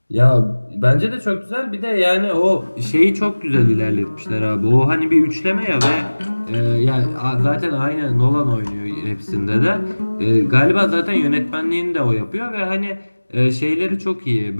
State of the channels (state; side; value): inverted; both; correlation -1.00